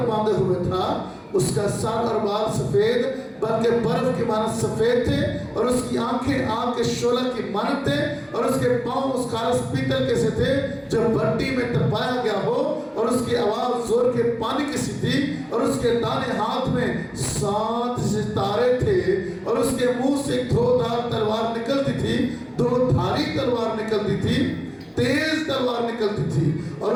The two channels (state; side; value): identical; both; correlation 1.00